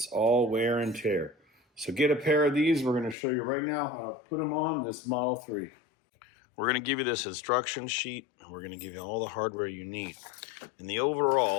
all wear and tear. So get a pair of these. We're going to show you right now how to put them on this Model 3. We're going to give you this instruction sheet, and we're going to give you all the hardware you need. And the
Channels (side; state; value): right; drops out; at 3.2 s